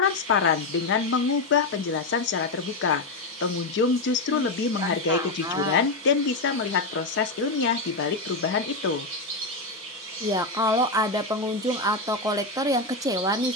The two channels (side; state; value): right; quieter; 3.2 dB